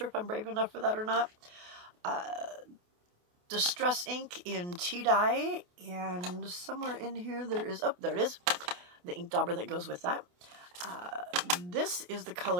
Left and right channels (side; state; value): left; late; 28 ms